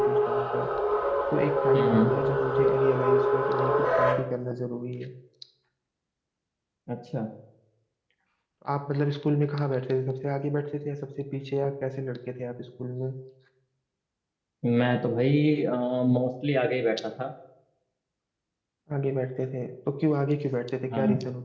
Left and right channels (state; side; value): identical; both; correlation 1.00